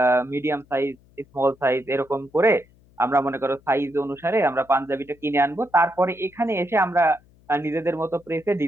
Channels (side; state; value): left; noise; hum, 30 dB below the sound